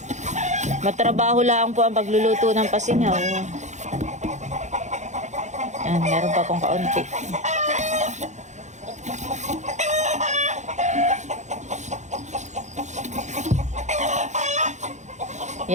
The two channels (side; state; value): left; late; 0.34 ms